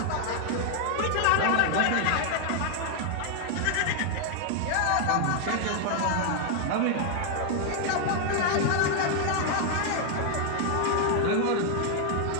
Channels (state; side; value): different; both; correlation 0.00